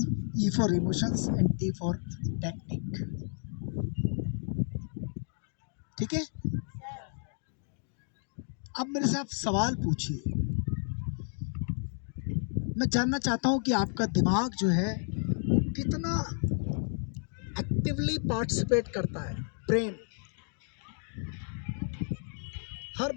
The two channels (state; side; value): silent; right; 57 dB below the other